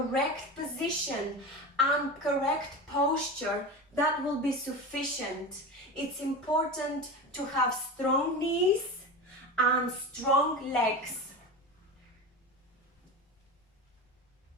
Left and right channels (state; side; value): normal; both; correlation 0.26